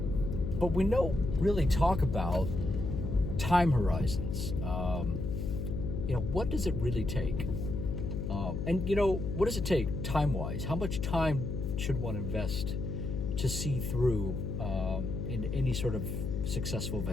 But we don't really talk about time horizons. What does it really take? And what does it take time-wise? How much time should one invest to see through in any sort of successful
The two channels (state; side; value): noise; left; hum, 3 dB below the sound